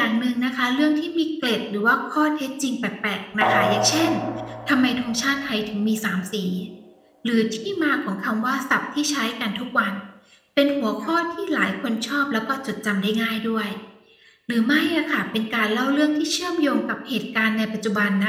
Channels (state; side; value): identical; both; correlation 1.00